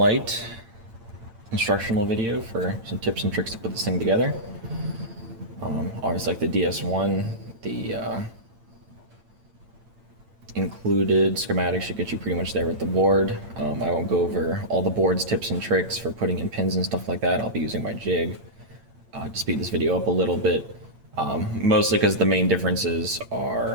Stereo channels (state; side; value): late; left; 8.8 ms